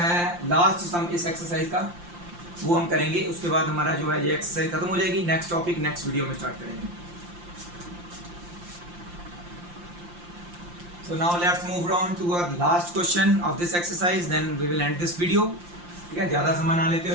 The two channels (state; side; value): late; left; 5.7 ms